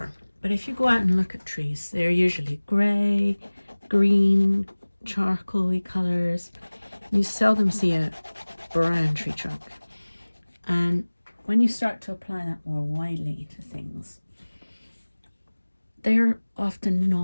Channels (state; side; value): inverted; both; correlation -1.00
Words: But if you go out and look at trees, they're usually grey, green, charcoaly colours. You seldom see a brown tree trunk. And when you start to apply that more widely to things, they're often